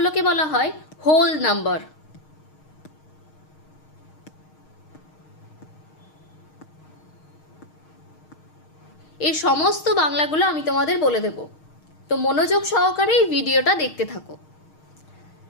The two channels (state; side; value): late; right; 6.5 ms